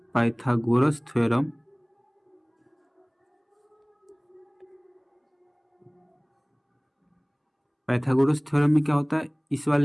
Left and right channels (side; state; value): both; identical; correlation 1.00